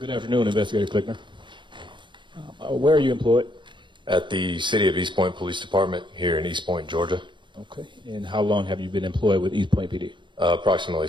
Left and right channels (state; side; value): late; left; 0.23 ms